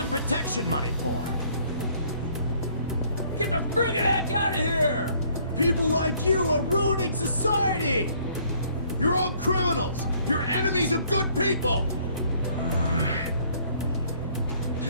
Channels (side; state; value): both; inverted; correlation -0.62